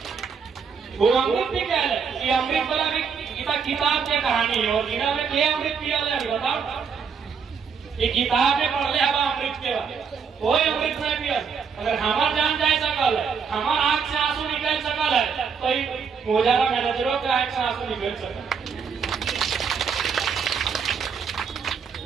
वो अमृत भी क्या है ये अमृत वाला भी किताब की कहानी है और जिन्होंने क्या अमृत पिया बताओ ये किताब में पढ़ ले हवा अमृत के बाद कोई अमृत नहीं पिया अगर हमार जान जाए सकल है हमार आंख से आंसू निकल सकल है तो मोजारा मैनेजरों के आंख से आंसू निकल सकल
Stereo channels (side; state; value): left; quieter; 6.2 dB